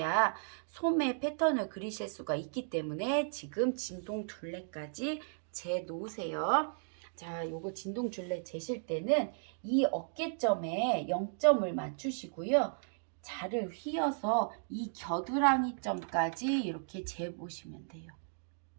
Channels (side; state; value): left; silent; digital silence